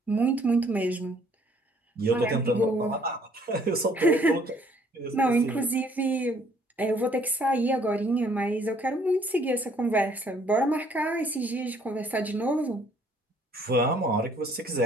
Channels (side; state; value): both; normal; correlation 0.62